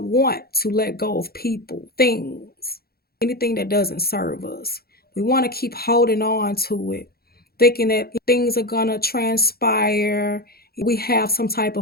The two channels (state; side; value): late; right; 0.45 ms